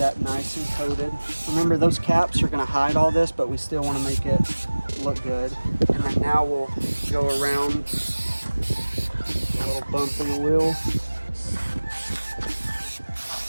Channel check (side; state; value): both; inverted; correlation -1.00